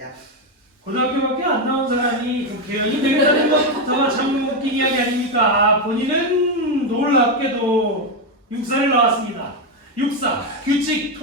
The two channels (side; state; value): both; normal; correlation 0.07